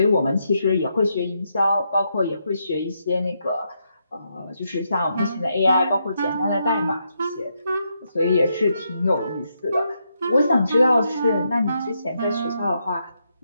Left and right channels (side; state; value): both; inverted; correlation -0.80